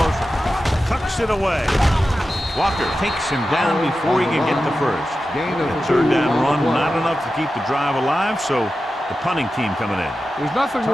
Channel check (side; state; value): both; normal; correlation 0.92